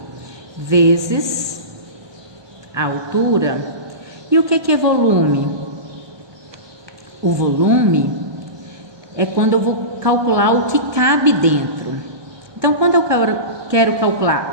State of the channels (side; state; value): left; late; 1.2 ms